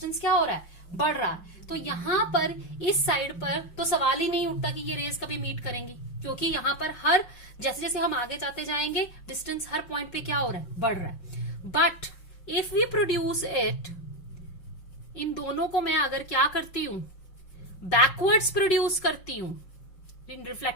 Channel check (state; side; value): late; right; 5.4 ms